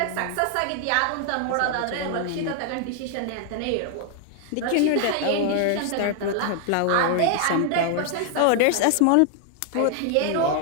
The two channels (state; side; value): different; both; correlation 0.00